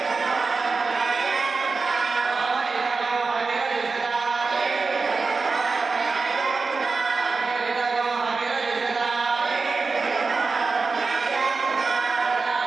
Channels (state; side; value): quieter; left; 4.2 dB